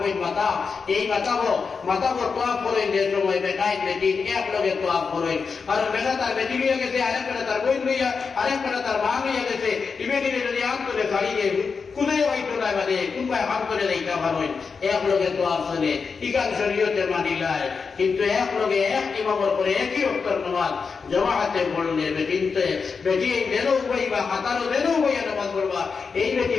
মাতাব এই মাতাবর তোয়াব করেন যে সময় বেটাই বেটিন এক লগে তোয়াব করেন আর বেটা তার বেটি লইয়া গেছে আরেক বেটা তার বই লইয়া আরেক বেটা তার মা লইয়া গেছে ইবেটিনে যদি আন্তরে ছাড়িয়ে কুদাই হইতো না মানে কুম্পায় হাত করে দেইতা ভালোই এক লগে তোয়াব চলে ইকান শরীয়তে মানিলায় কিন্তু এক লগে এক ইমামের করে একই অক্ষর নামাজ জামাতে পড়লে বেটিনতে বেটি দেনও বইবা হাতারও দেনও বইয়া নামাজ পড়বা এই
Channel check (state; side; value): quieter; right; 5.3 dB